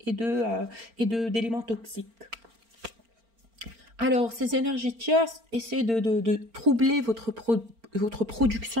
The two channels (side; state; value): left; late; 4.4 ms